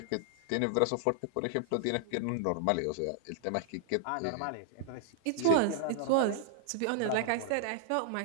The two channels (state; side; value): different; both; correlation 0.00